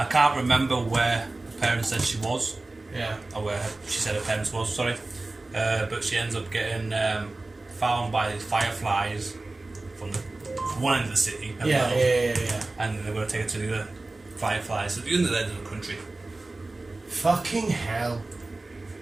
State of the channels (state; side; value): quieter; left; 3.1 dB